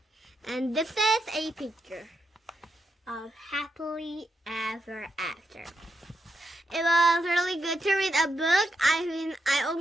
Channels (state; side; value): normal; both; correlation 0.82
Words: And this is a picture of Happily Ever After. It was really good to read a book. I